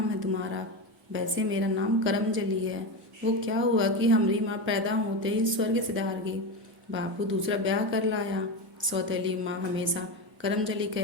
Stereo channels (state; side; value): normal; both; correlation 0.18